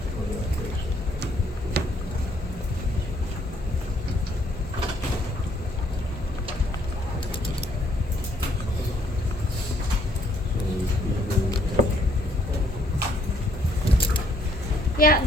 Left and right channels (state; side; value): normal; both; correlation 0.66